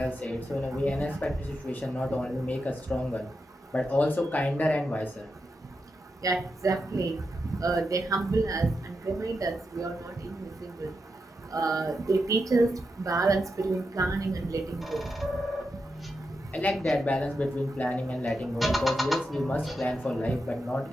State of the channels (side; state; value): both; normal; correlation 0.87